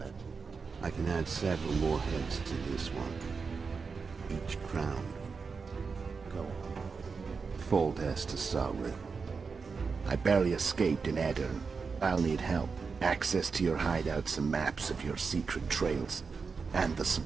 I can add several more heads to this one. Each crowned. Go on. Full test to SOBRE. I barely escaped in Aedirn. I'll need help. Access to your hideouts and maps of your secret trails. And the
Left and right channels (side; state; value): left; quieter; 5.0 dB